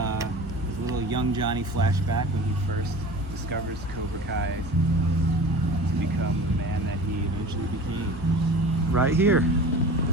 little young Johnny flashback when he first discovers Cobra Kai to become the man that he eventually became. Right here.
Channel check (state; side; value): normal; both; correlation 0.38